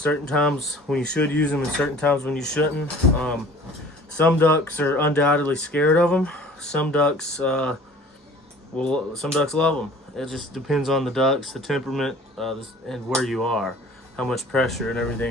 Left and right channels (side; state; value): both; normal; correlation 0.48